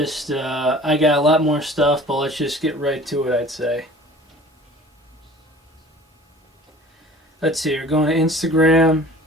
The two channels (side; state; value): both; normal; correlation 0.46